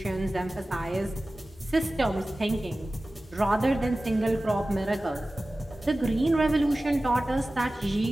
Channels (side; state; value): both; normal; correlation 0.96